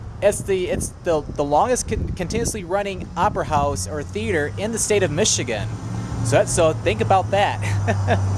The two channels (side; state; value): both; identical; correlation 1.00